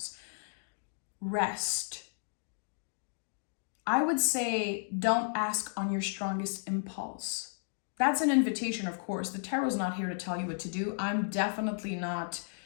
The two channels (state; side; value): silent; right; digital silence